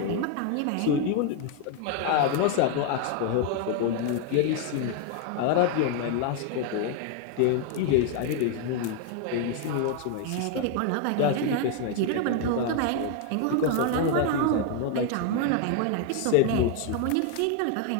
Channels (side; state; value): both; different; correlation 0.00